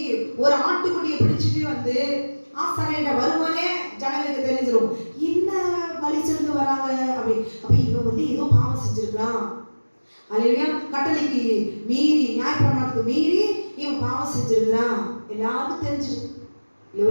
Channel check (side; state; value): both; inverted; correlation -1.00